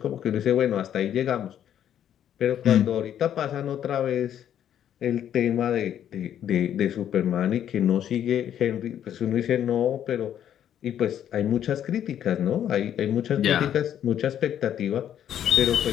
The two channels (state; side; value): quieter; right; 10.1 dB